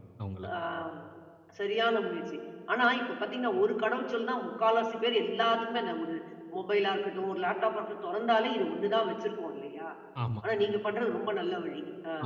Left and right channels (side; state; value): both; identical; correlation 1.00